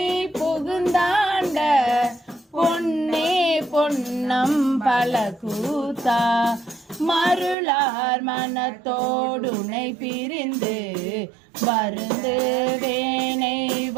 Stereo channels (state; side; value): drops out; left; at 7.6 s